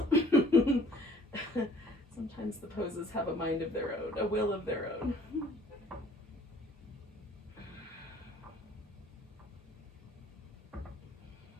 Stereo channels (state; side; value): normal; both; correlation 0.55